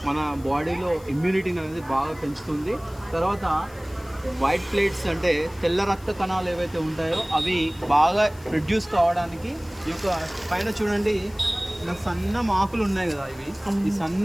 మన బాడీలో ఇమ్యూనిటీని అనేది బాగా పెంచుతుంది. తర్వాత వైట్ ప్లేట్స్ అంటే తెల్ల రక్త కణాలు ఏవైతే ఉంటాయో అవి బాగా ప్రొడ్యూస్ కావడానికి ఈ యొక్క పైన చూడండి, ఇలా సన్న ఆకులు ఉన్నాయి కదా. ఈ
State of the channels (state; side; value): noise; left; hiss, 24 dB below the sound